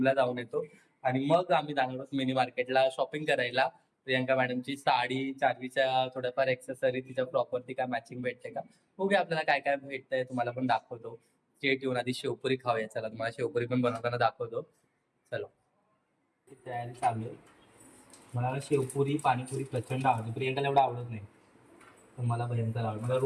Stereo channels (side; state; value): both; identical; correlation 1.00